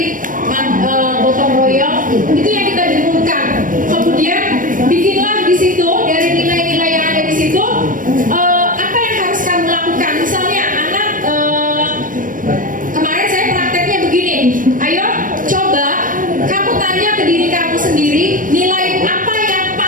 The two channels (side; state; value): left; late; 0.39 ms